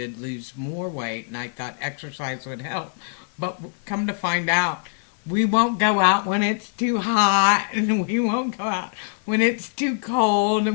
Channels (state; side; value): silent; right; 61 dB below the other